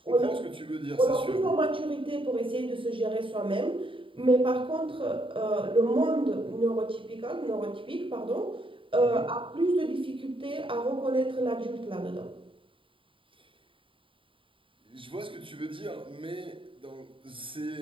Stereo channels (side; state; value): left; late; 0.25 ms